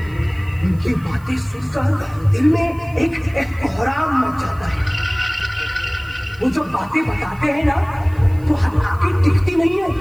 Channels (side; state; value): right; noise; hiss, 27 dB below the sound